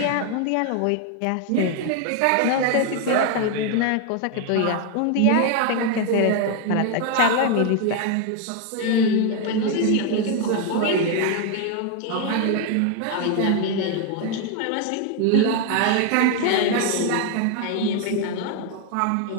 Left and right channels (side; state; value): both; different; correlation 0.01